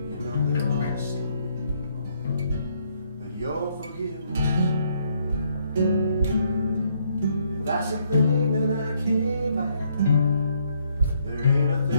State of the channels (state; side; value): inverted; both; correlation -0.71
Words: know that I'll see but your forgiveness. That's the thing that I can't buy. There ain't a